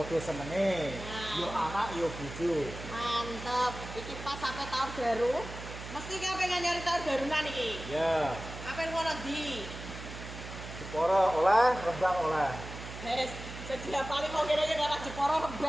senenge. Nah. Yo anak yo bojo. Mantap. Iki pas sampai tahun baru. Mesti kowe pengen nyari tahun barunan iki. Ya, Apa yang ngono ndi? Jepara oleh, Rembang oleh. Wes, sedia paling mau kene karo Jepara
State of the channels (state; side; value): noise; right; hum, 11 dB below the sound